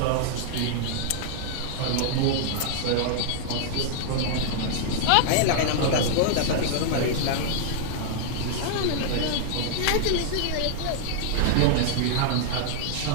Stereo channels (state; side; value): different; both; correlation -0.01